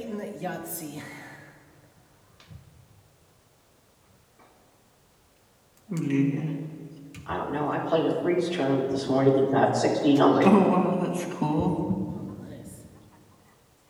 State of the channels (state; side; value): identical; both; correlation 1.00